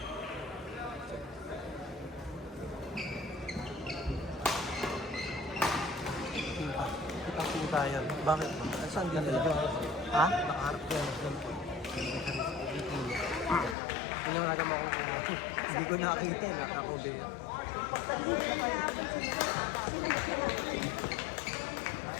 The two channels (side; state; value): right; drops out; at 13.8 s